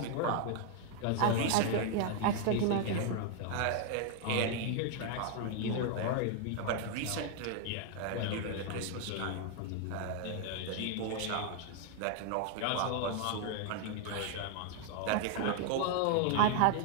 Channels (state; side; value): different; both; correlation 0.00